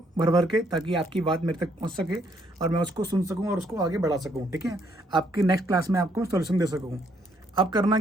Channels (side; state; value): both; normal; correlation 0.70